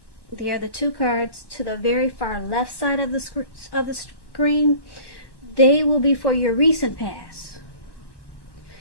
They are the 2 cards to the very far left side of the screen. They will be for your recent past.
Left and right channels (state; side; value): late; right; 1.1 ms